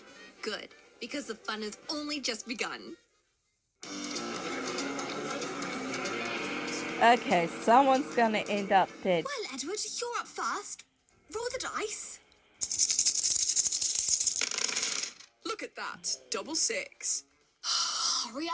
Good, because the fun has only just begun. Okay, someone's gonna end up dead. Well, Edward, you're up first. Roll the dice. Look at that. Double 6. Hurry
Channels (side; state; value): both; identical; correlation 1.00